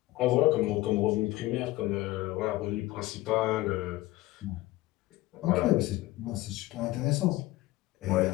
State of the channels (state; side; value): quieter; right; 18.2 dB